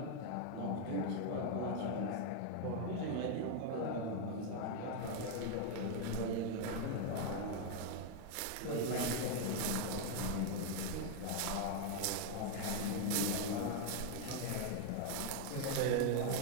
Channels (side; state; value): both; different; correlation 0.00